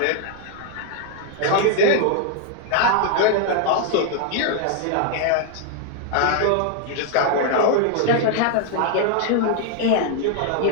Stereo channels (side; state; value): both; different; correlation 0.00